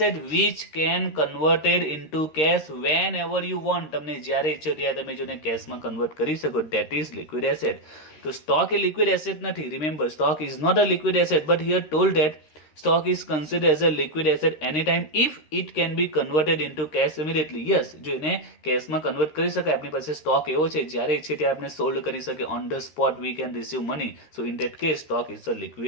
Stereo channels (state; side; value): late; right; 13 ms